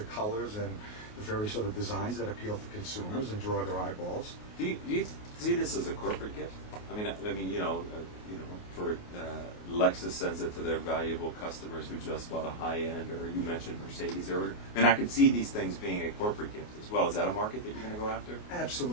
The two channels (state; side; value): late; right; 28 ms